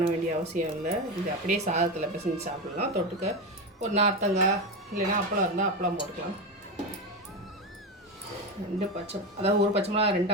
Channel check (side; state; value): both; normal; correlation 0.17